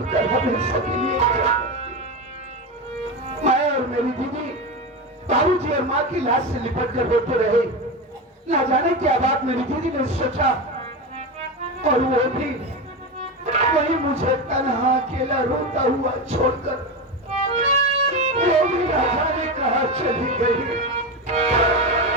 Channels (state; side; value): normal; both; correlation 0.18